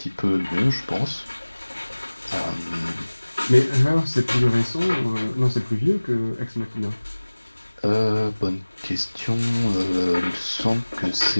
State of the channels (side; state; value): both; inverted; correlation -1.00